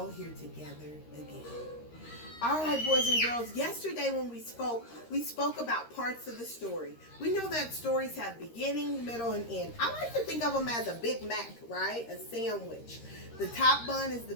here together again. All right, boys and girls, yesterday when we spoke about parts of the story. We know that stories have beginning, middle, and end. I like to think of them as a Big Mac, right? A sandwich. The top bun is the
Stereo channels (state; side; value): late; right; 13 ms